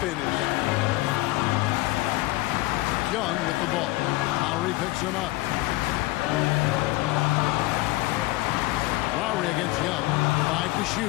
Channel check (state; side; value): quieter; right; 19.9 dB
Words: Young with the ball. Lowry picks him up. Lowry against Young. 5 to